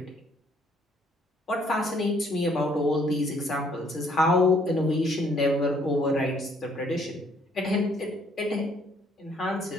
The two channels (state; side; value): normal; both; correlation 0.64